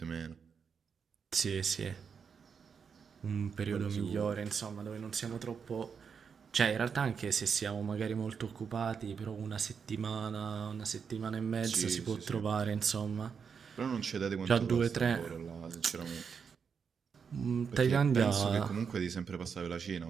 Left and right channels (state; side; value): quieter; left; 6.4 dB